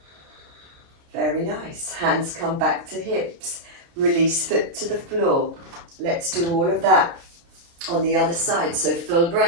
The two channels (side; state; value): left; late; 29 ms